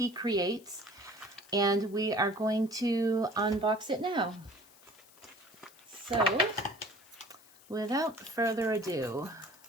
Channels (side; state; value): left; noise; hiss, 25 dB below the sound